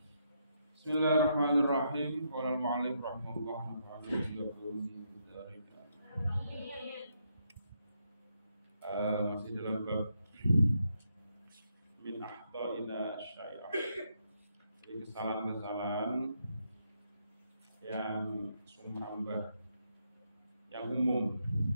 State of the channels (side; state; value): both; inverted; correlation -0.78